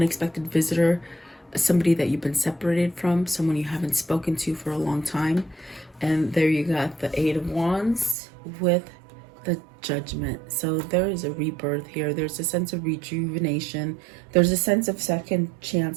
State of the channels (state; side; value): drops out; left; at 8.2 s